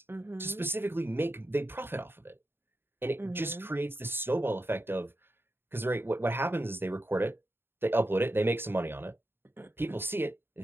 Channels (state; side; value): late; left; 0.11 ms